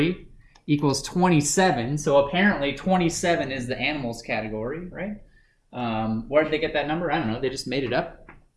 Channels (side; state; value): both; identical; correlation 1.00